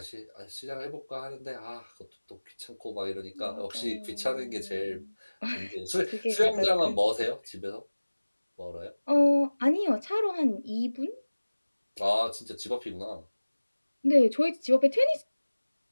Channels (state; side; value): inverted; both; correlation -1.00